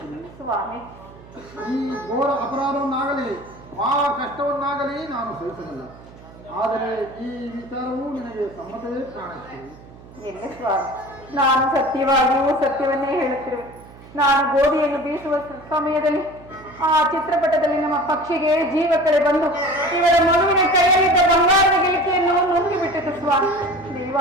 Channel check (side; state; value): right; noise; hum, 20 dB below the sound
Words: ಸ್ವಾಮಿ, ಈ ಘೋರ ಅಪರಾಧವನ್ನಾಗಲಿ ಆ ಕಷ್ಟವನ್ನಾಗಲಿ ನಾನು ಸಹಿಸಬಲ್ಲ. ಆದರೆ ಈ ವಿಚಾರವು ನಿನಗೆ ಸಮ್ಮತವೇ ಕಾಣುತ್ತೆ. ಇಲ್ಲ ಸ್ವಾಮಿ, ನಾನು ಸತ್ಯವಾಗಿಯೂ ಸತ್ಯವನ್ನೇ ಹೇಳುತ್ತಿರುವೆ. ನಾನು ಗೋಧಿಯನ್ನು ಬೀಸುವ ಸಮಯದಲ್ಲಿ ಆ ಚಿತ್ರಪಟದಲ್ಲಿ ನಮ್ಮ ಪಕ್ಷಿಗೆ ಜೀವ ಕಳೆ ಬಂದು ಇವರ ಮಗುವಿನ ಕೈಯಲ್ಲಿದ್ದ ಬಂಗಾರದ ಗಿಲ್ಕೆಯನ್ನು ನುಂಗಿ ಬಿಟ್ಟಿತು ಸ್ವಾಮಿ.